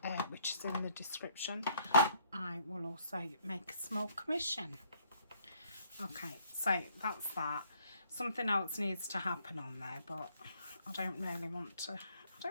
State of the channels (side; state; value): both; inverted; correlation -0.65